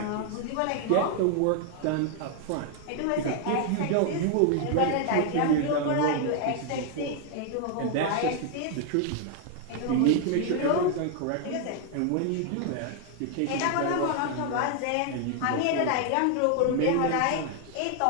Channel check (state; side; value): different; both; correlation 0.00